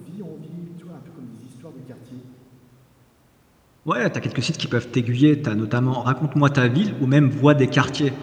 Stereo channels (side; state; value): both; identical; correlation 1.00